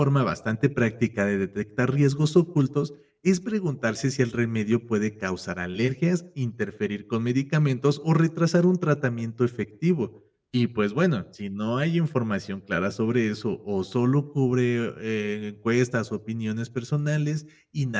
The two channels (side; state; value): both; identical; correlation 1.00